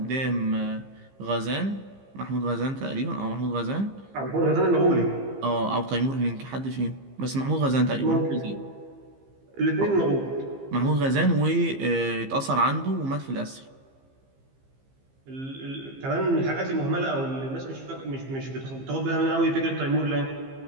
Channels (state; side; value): late; left; 15 ms